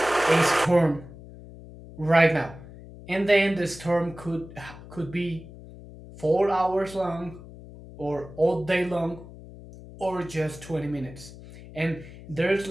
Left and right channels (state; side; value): noise; left; hum, 17 dB below the sound